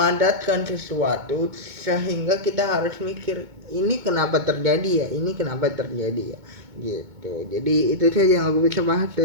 sesuatu, sehingga kita harus mikir ini kenapa terjadi ya gitu. Jadi itu saja yang aku bisa bahas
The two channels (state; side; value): late; left; 2.2 ms